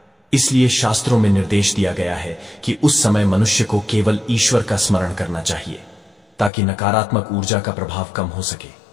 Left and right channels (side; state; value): right; drops out; at 6.5 s